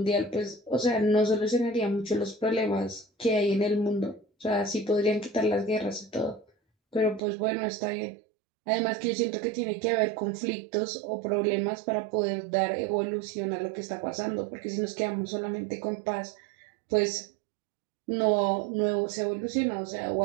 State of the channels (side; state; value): left; drops out; at 7.2 s